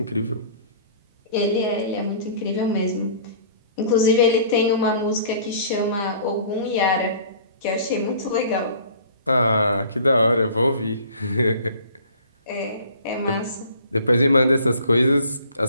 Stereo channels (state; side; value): inverted; both; correlation -0.49